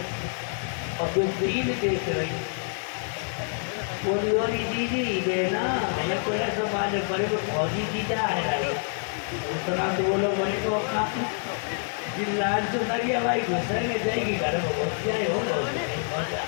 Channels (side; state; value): right; silent; 60 dB below the other